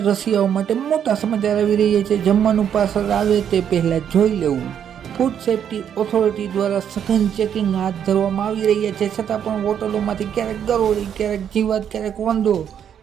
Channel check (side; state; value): left; quieter; 8.8 dB